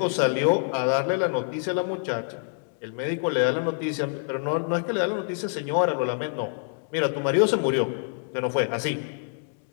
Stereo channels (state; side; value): silent; right; digital silence